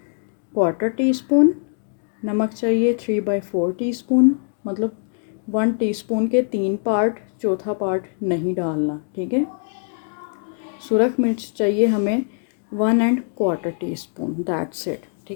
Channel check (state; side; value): silent; right; 64 dB below the other